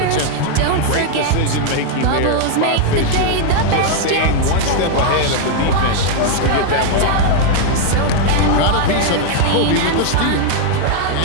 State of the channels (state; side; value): different; both; correlation 0.00